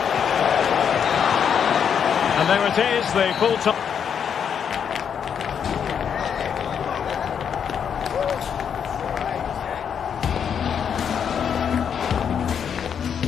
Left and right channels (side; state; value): right; quieter; 7.7 dB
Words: And there it is, the full time.